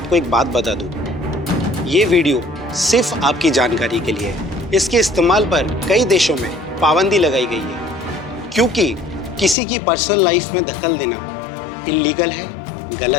एक बात बता दूं, ये वीडियो सिर्फ आपकी जानकारी के लिए है। इसके इस्तेमाल पर कई देशों में पाबंदी लगाई गई है, क्योंकि किसी की पर्सनल लाइफ में दखल देना इल्लीगल है,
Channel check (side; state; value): right; drops out; at 9.6 s